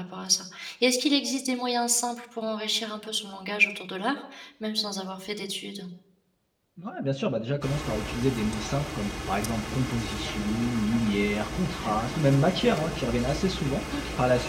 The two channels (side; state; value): both; identical; correlation 1.00